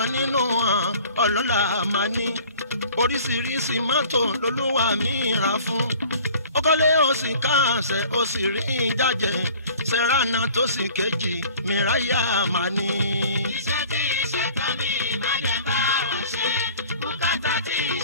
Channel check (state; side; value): inverted; both; correlation -0.48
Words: nínú wọn ọlọ́lá máa ní oríṣiríṣi mọ́tò lolúwa mi rà fún. ó kọ́lé ó sì káàsẹ̀ ó sì rí jájẹ sẹ́ránà tó sì kejì mìráyà máa ní. iṣẹ́ tí iṣẹ́ tán mi má jẹ́ bá wọn ṣe bùkátà tí